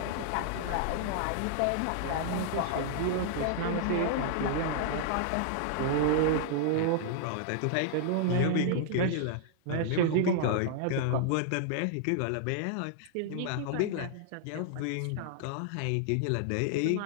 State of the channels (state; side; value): different; both; correlation -0.01